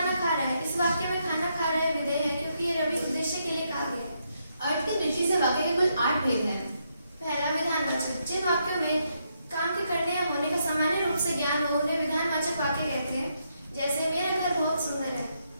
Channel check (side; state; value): both; inverted; correlation -0.79